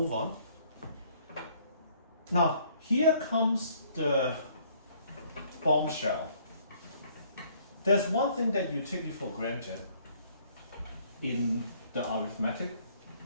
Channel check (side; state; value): both; inverted; correlation -0.62